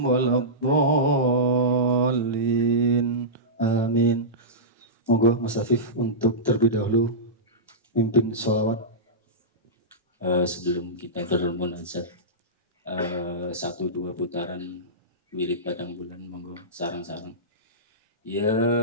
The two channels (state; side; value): normal; both; correlation -0.17